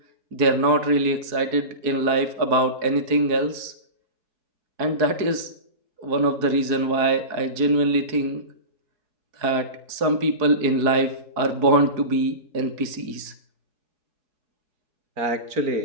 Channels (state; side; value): late; left; 4.7 ms